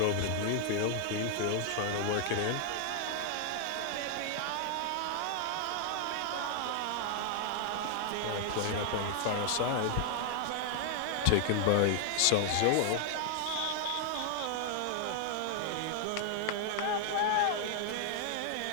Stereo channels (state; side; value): different; both; correlation 0.00